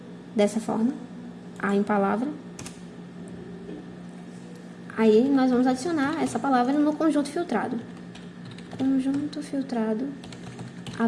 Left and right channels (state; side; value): identical; both; correlation 1.00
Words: dessa forma. A em palavra. Aí, nós vamos adicionar essa palavra no conjunto filtrado. Conjunto filtrado